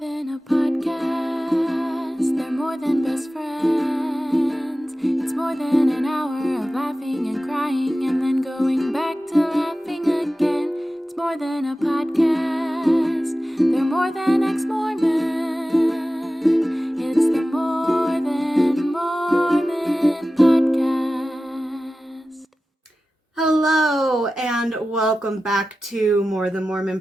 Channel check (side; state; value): both; normal; correlation 0.95